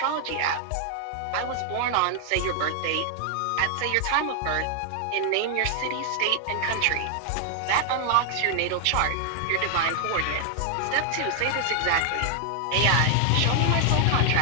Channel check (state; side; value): different; both; correlation 0.00